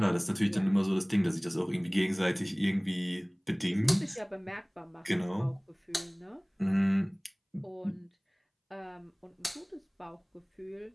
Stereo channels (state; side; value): identical; both; correlation 1.00